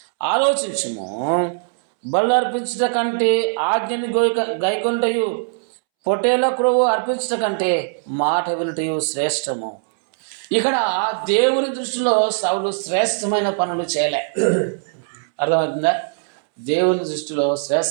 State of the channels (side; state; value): left; silent; 65 dB below the other